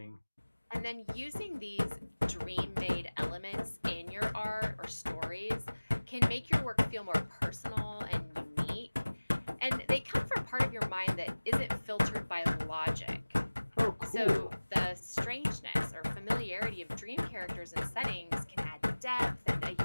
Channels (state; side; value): inverted; both; correlation -1.00